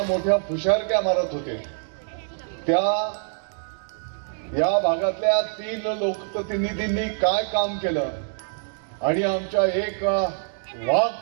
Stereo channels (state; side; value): silent; left; digital silence